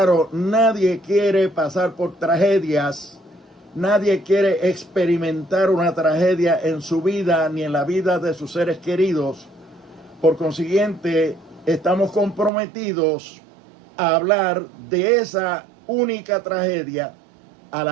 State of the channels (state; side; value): drops out; left; at 12.5 s